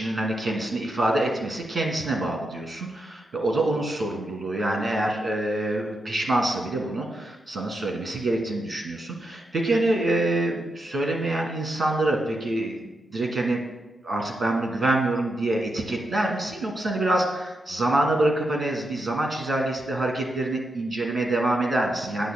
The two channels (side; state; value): both; normal; correlation 0.85